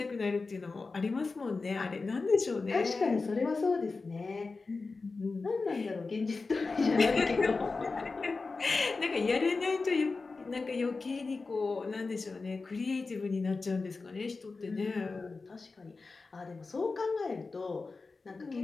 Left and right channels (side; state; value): right; quieter; 4.0 dB